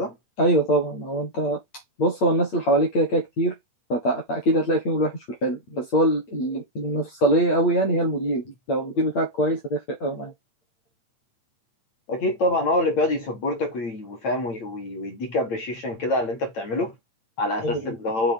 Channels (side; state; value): right; late; 8.7 ms